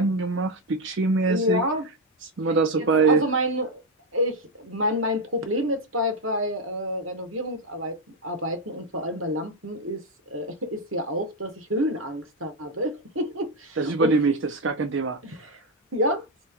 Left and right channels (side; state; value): both; normal; correlation 0.06